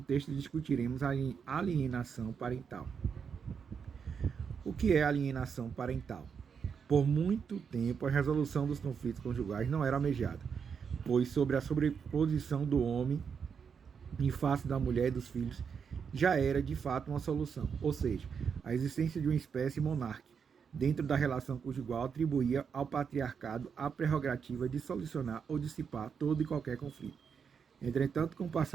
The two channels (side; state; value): left; quieter; 6.5 dB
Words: discutiremos a alienação parental. O que é alienação parental? Por muito tempo, a resolução dos conflitos conjugais não era almejada, pois sobre a sobreposição do homem em face da mulher e dos filhos já era de fato uma solução, ou seja, a existência de uma espécie monárquica dentro da relação conjugal atribuía ao patriarcado a prerrogativa de solucionar ou dissipar todo e qualquer conflito. Entretanto, com o